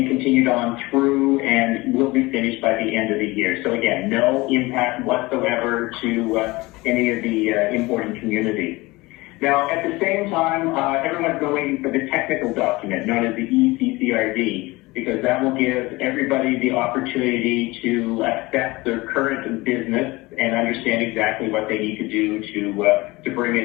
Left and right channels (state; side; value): quieter; right; 21.7 dB